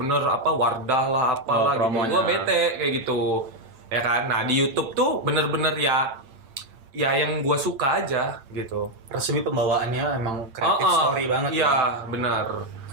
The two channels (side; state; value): left; late; 8.8 ms